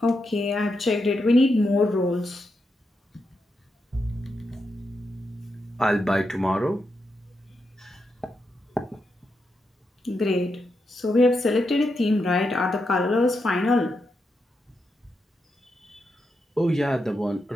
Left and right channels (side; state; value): both; normal; correlation 0.85